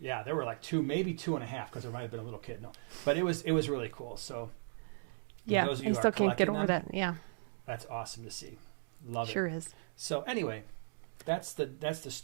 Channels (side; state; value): left; silent; digital silence